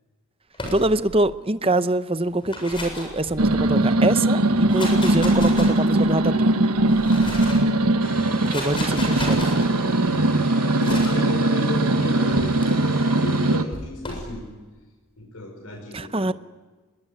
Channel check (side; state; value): both; normal; correlation 0.50